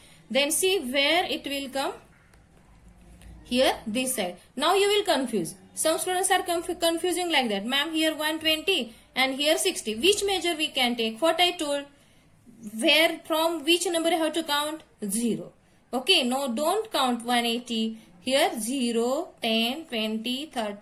Then see where it will come, here this side. Now you will confuse, some students are confusing like that, ma'am, here 120 and here 60, which measure we can take? What I told, where from which number I have to count? 0. Okay, no, don't count 180. Here 0, 10, 20,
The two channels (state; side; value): identical; both; correlation 1.00